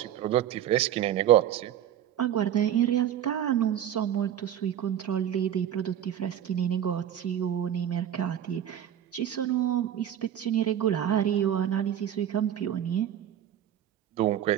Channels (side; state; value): left; quieter; 10.6 dB